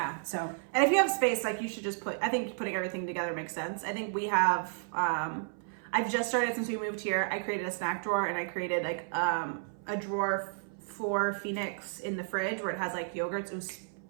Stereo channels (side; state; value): left; silent; 56 dB below the other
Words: So. And if you have space, like, you should just I think putting everything together makes sense. I think we have, I've just started since we moved here. I created a snack drawer, and I created, like, a drawer for Phoenix in the fridge where it has, like, yogurts.